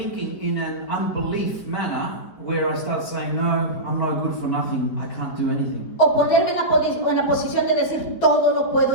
in an unbelief manner, where I start saying, no, I'm no good for nothing, I can't do anything. O ponerme en la posición de decir, todo lo puedo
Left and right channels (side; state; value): right; late; 4.7 ms